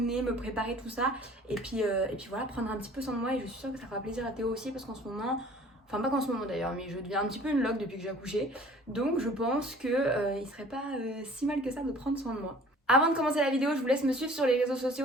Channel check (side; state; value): both; normal; correlation 0.49